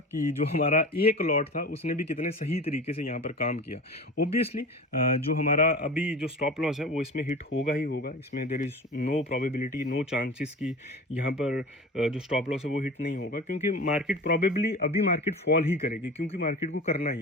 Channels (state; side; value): normal; both; correlation 0.34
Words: कि जो हमारा एक लॉट था उसने भी कितने सही तरीके से यहाँ पर काम किया। ऑब्वियसली जो हमारा अभी जो स्टॉप लॉस है वो इसमें हिट होगा ही होगा, इसमें there is no probability, no chances कि यहाँ पर जो स्टॉप लॉस है वो हिट नहीं होगा, क्योंकि मार्केट प्रॉबेबली अभी मार्केट फॉल ही करेगी, क्योंकि मार्केट को करना